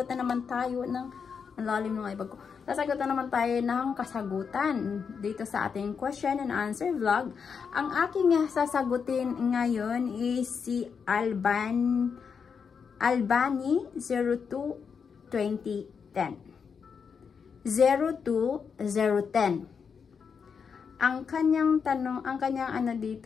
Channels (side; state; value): right; quieter; 6.2 dB